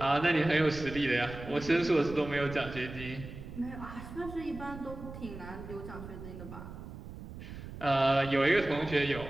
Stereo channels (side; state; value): right; noise; rumble, 12 dB below the sound